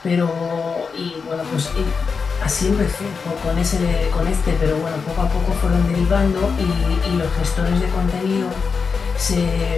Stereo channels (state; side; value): quieter; right; 5.3 dB